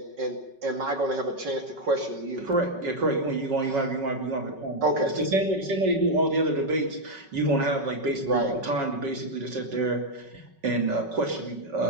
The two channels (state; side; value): late; left; 5.3 ms